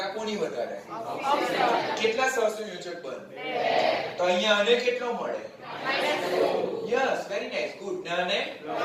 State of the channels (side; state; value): both; identical; correlation 1.00